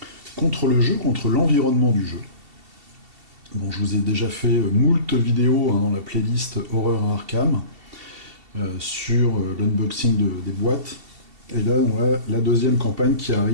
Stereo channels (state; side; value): late; left; 2.7 ms